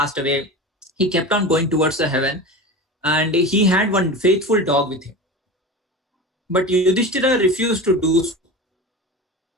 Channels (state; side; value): normal; both; correlation 0.29